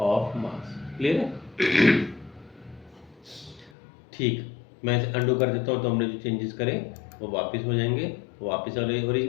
मास। क्लियर है? ठीक, मैं इसे अंडू कर देता हूँ तो हमने जो चेंजेस करे वो वापस हो जाएंगे, वापस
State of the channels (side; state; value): right; drops out; at 3.7 s